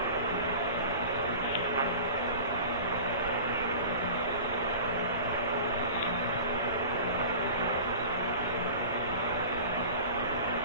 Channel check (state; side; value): inverted; both; correlation -0.38